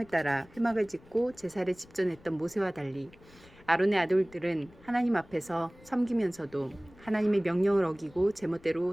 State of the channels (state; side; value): noise; left; rumble, 24 dB below the sound